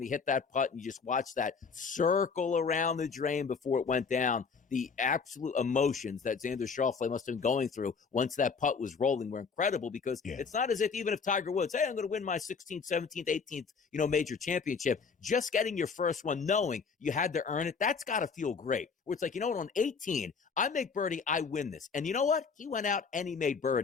he hit that putt and you just watched that circle around the drain before it went down, the absolute emotions that Xander Schauffele must have been going through once that putt was rolling were incredible, because it's not as if even if Tiger Woods, hey, I'm going to win my 16th, 17th, 18th, major championship, just getting your first one, knowing you had to earn it, that's got to feel great. Where it's like, you know what, on 18, I make birdie, I win this. And you know what? He went out and he made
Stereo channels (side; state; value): right; quieter; 5.4 dB